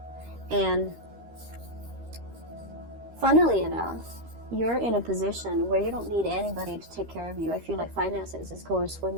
And funnily enough, you're in a position where you don't need anybody to take care of you. I feel like finances is going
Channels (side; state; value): left; late; 13 ms